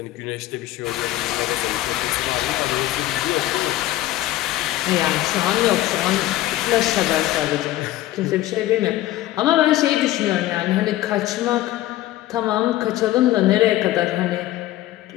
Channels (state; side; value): quieter; right; 15.2 dB